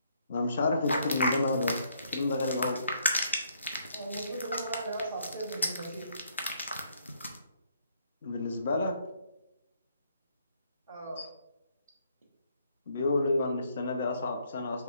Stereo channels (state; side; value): inverted; both; correlation -0.69